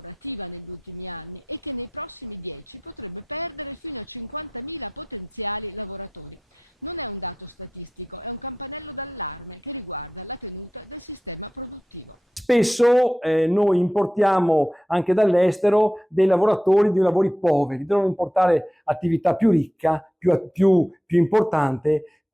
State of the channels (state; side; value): normal; both; correlation 0.89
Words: negli ultimi anni e che nei prossimi 10 potrebbe perdere fino a 50.000 potenziali lavoratori. Non è un dato statistico, è un campanello d'allarme che riguarda la tenuta del sistema produttivo. Spesso noi importiamo anche dall'estero dei lavoratori di lavori poveri, devono importare attività più ricca, più importante,